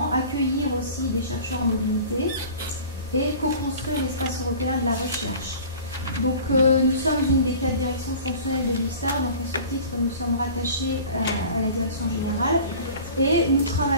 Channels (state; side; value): inverted; both; correlation -0.42